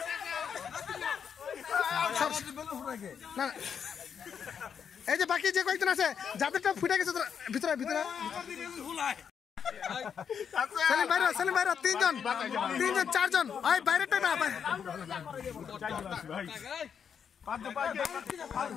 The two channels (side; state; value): right; quieter; 7.4 dB